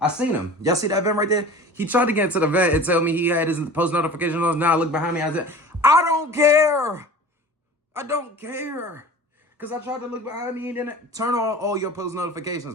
I seen him. Y'all see that vent right there? He tried to get into the vent and tell me he had his post notifications on. Now I look behind me. I said, I don't care. I don't care. Because I tried to look behind me and then turn on all your post notifications,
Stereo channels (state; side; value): normal; both; correlation 0.40